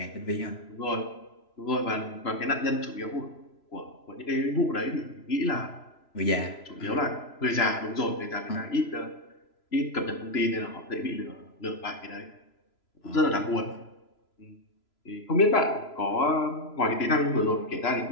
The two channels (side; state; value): right; late; 3.0 ms